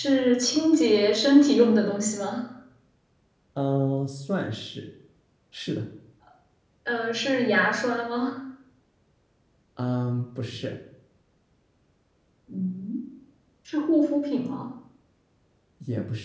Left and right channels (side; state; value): both; identical; correlation 1.00